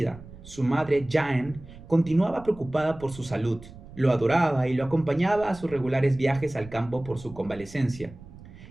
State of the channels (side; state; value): right; noise; rumble, 18 dB below the sound